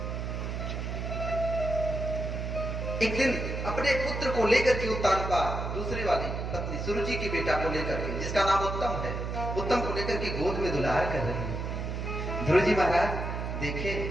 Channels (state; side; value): noise; right; hum, 4 dB below the sound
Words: एक दिन अपने पुत्र को लेकर के उत्तानपा दूसरी वाली पत्नी सुरुचि की बेटा को लेकर के, जिसका नाम उत्तम है, उत्तम को लेकर के गोद में दुलार कर रही है। ध्रुव जी महाराज देखे